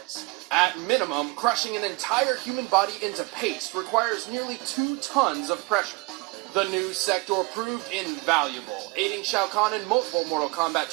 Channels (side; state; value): left; quieter; 26.2 dB